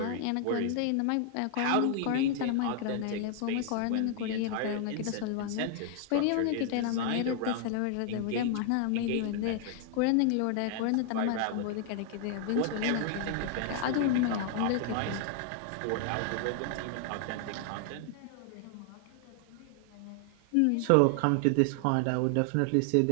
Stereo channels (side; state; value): both; different; correlation 0.00